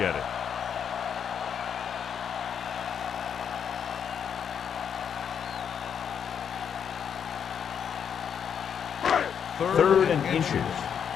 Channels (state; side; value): quieter; right; 7.8 dB